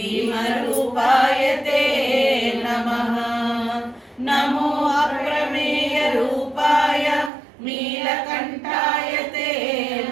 ते नमः नमो अप्रमेय रूपाय नीलकण्ठाय ते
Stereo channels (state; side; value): drops out; left; at 7.3 s